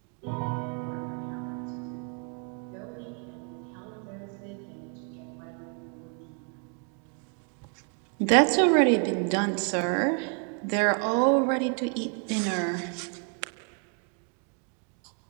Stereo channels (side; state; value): left; quieter; 40.0 dB